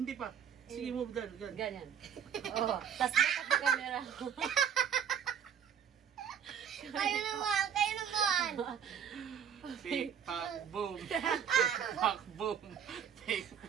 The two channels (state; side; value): quieter; left; 8.1 dB